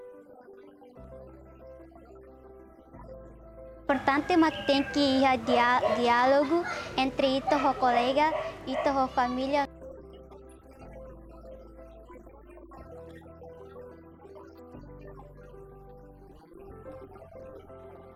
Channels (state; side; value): identical; both; correlation 1.00